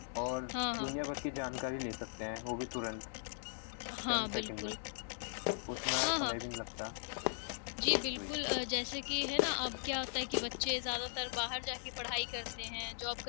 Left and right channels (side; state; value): right; silent; 52 dB below the other